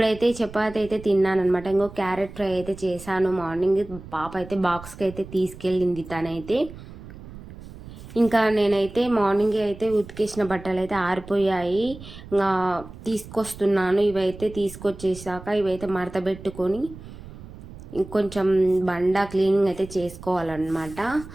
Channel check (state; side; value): noise; right; rumble, 15 dB below the sound